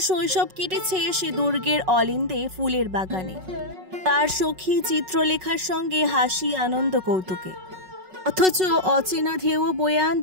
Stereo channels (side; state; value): left; late; 5.4 ms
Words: শৈশব কেটেছে সে দুর্গের অলিন্দে ফুলের বাগানে, তার সখী চিত্রলেখার সঙ্গে হাসি, আনন্দ, কৌতুকে। অথচ অচেনা ঢেউ বয়ে